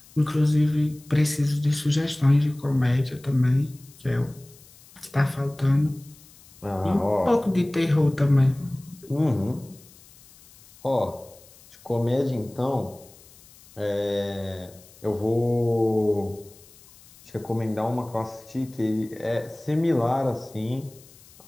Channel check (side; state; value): left; noise; hiss, 24 dB below the sound